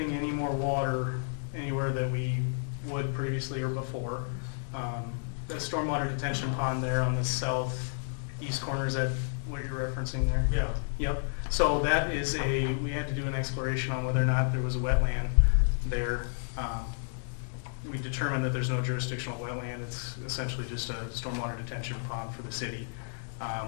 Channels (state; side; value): silent; right; digital silence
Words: any more water anywhere that we would previously or before. The stormwater detention pond there on the southeast corner, is that what you're referencing there? Yeah. Yep, so that is we had to do an exploration on whether or not there was a wetland there. We determined that there's no jurisdictional wetland. It's essentially just a stormwater detention pond for the city.